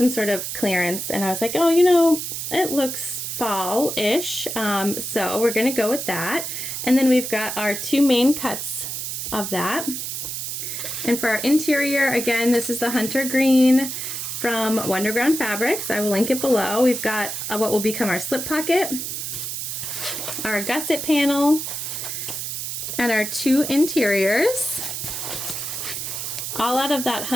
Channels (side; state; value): right; noise; hiss, 5 dB below the sound